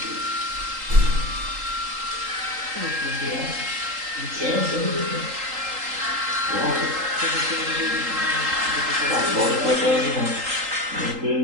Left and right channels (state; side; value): late; left; 3.8 ms